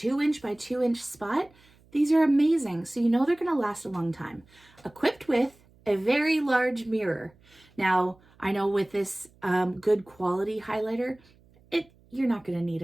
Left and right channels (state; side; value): noise; right; hum, 30 dB below the sound